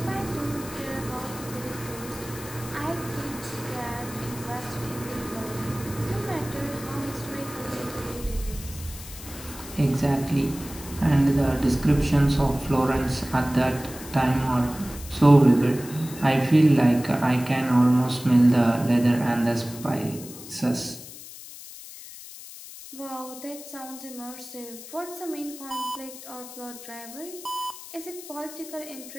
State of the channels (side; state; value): left; noise; hiss, 14 dB below the sound